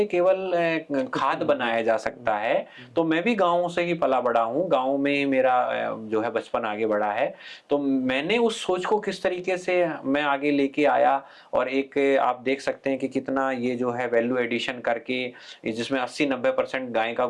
केवल खाद बनाया जा सकता है। तो मैं भी गाँव से ही पला बड़ा हूँ, गाँव में ही मेरा जो है बचपन आगे बढ़ा है। तो मैंने उस सोच को किस तरीके से मैं आगे लेके आया, और एक आप देख सकते हैं कि कितना ये जो है वैल्यू एडिशन करके, जिसमें 80-90% गाय का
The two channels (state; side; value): identical; both; correlation 1.00